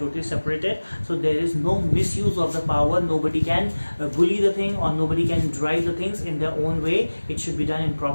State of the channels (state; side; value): inverted; both; correlation -1.00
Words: separated, so there is no misuse of the power. Nobody can bully the thing or nobody can drive the things in their own way. It should be done in